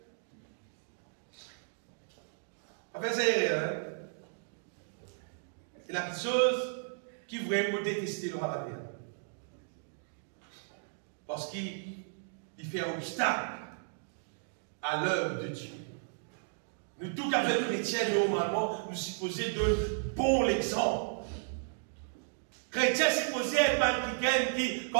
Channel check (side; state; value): left; silent; digital silence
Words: Enfin, c'est hein? C'est la petite chose qui vraiment détester le roi de la terre. Parce qu'il fait un obstacle à l'œuvre de Dieu. Nous, tout qu'à fait chrétiens, normalement, nous supposons donner bon exemple. Chrétien supposé être quelqu'un qui,